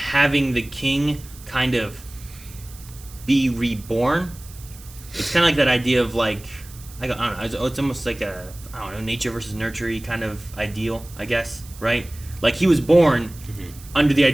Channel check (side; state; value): right; noise; hiss, 20 dB below the sound